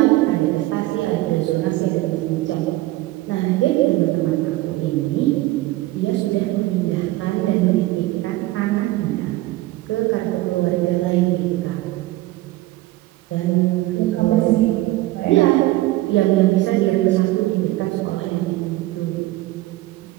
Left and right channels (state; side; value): quieter; left; 17.8 dB